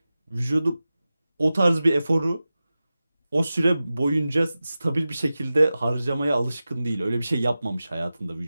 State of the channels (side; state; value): both; inverted; correlation -0.95